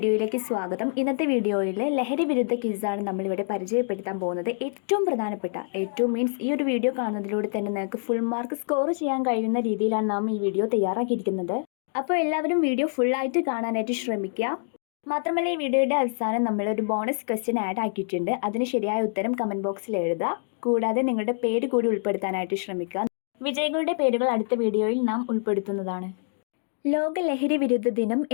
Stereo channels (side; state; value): right; silent; digital silence